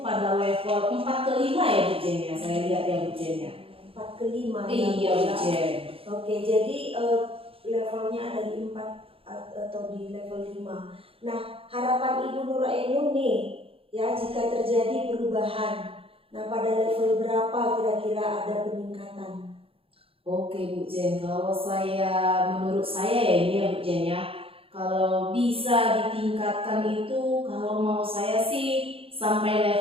level 4 ke 5 ya Bu Jen ya, saya lihat ya Bu Jen ya. 4 ke 5 Iya Bu Jen. Oke, jadi levelnya ada di 4 atau di level 5. Nah, harapan Ibu Nur Ainun nih, ya jika terjadi perubahan, nah pada level berapa kira-kira ada peningkatan? Oke Bu Jen, kalau menurut saya ya ini ya Bu Jen ya, kalau bisa ditingkatkan itu, kalau mau saya sih sampai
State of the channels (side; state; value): left; late; 0.27 ms